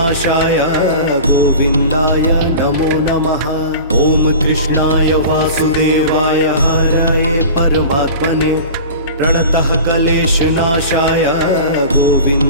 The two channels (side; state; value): both; inverted; correlation -0.36